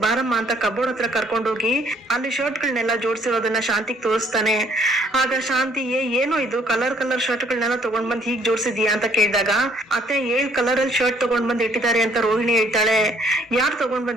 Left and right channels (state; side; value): normal; both; correlation 0.63